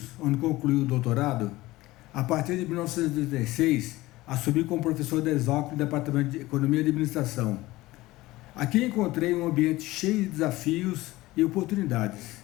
onde concluí o doutorado, a partir de 1986, assumi como professor da Exalc no Departamento de Economia e Administração. Aqui encontrei um ambiente cheio de desafios e oportunidades.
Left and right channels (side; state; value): right; quieter; 18.6 dB